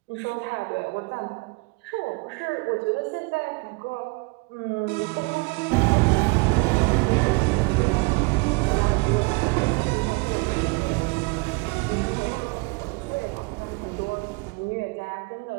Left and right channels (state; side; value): quieter; left; 29.3 dB